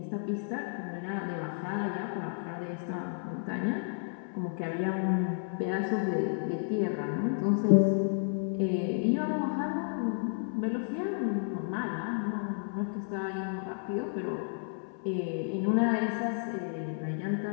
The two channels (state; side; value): silent; right; 57 dB below the other